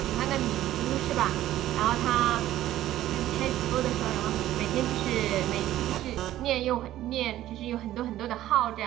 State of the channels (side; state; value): left; quieter; 13.9 dB